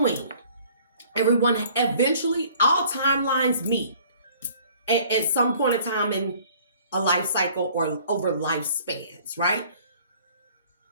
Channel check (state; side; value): inverted; both; correlation -0.54